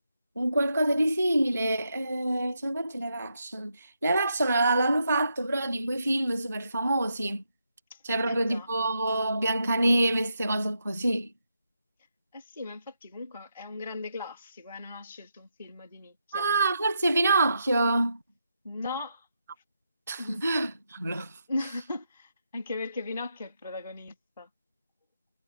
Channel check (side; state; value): both; inverted; correlation -0.83